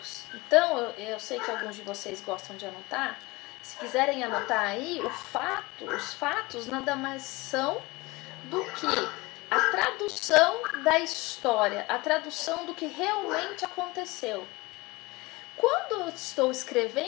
Então, eu sei que alguns de vocês gostam de anotar. Se quiserem anotar aí, os fatos nada mais são do que a tradução da história, a tradução do que realmente aconteceu. Quando eu estou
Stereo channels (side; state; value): right; quieter; 22.9 dB